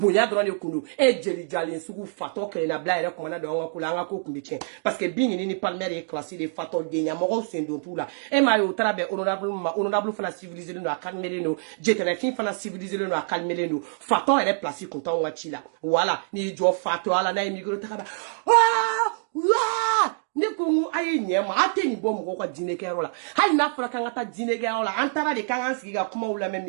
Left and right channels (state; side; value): silent; left; digital silence